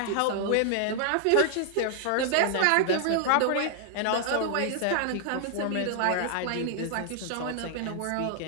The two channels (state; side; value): different; both; correlation 0.00